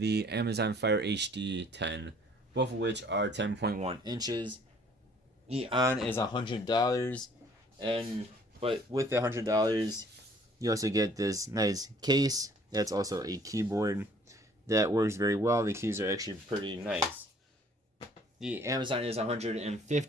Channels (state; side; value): normal; both; correlation 0.57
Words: Amazon Fire HD 10, both of which are 10.1 inches. The On is $100, and but with the $100, you also get this nice case. That's also a keyboard that works very well. The keys are actually pretty nice. The Amazon is